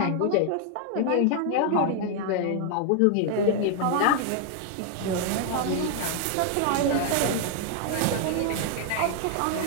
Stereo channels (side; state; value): both; different; correlation 0.00